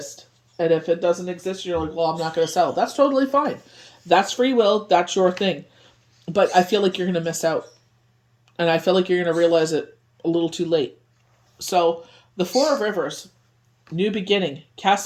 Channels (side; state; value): both; identical; correlation 1.00